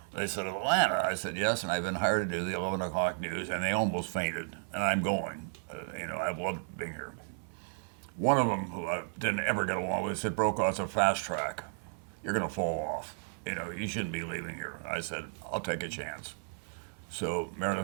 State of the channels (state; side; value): silent; left; 55 dB below the other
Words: They said, Atlanta? I said, yes, and I've been hired to do the 11 o'clock news, and they almost fainted, and I'm going. I've loved being here. One of them, who I didn't ever get along with, said, Brokaw, it's a fast track. You're going to fall off. You shouldn't be leaving here. I said, I'll take a chance. So